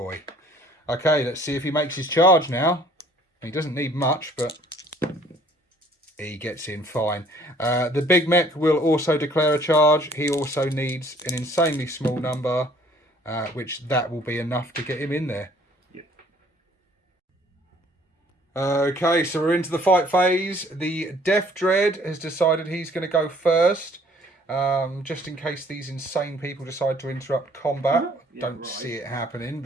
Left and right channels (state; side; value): normal; both; correlation 0.57